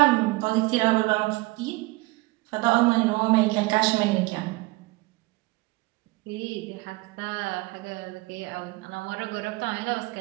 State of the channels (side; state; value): left; quieter; 22.8 dB